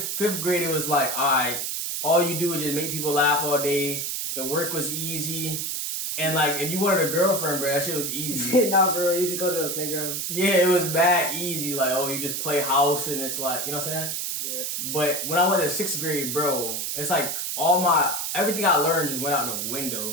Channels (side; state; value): right; noise; hiss, 2 dB below the sound